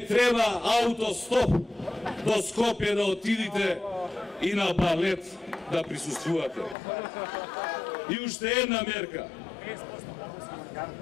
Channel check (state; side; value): drops out; right; at 6.8 s